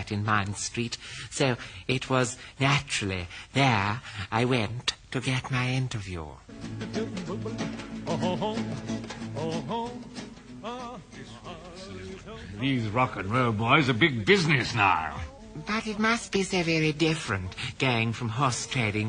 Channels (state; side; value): identical; both; correlation 1.00